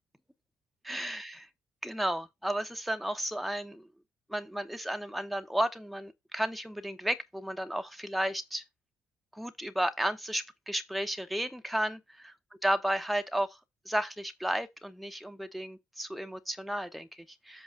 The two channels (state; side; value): normal; both; correlation 0.95